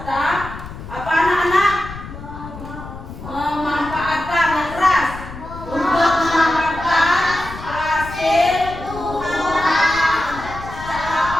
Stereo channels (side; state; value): left; noise; rumble, 12 dB below the sound